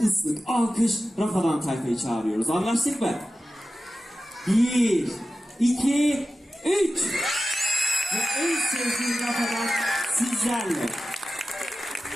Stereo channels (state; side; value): normal; both; correlation 0.94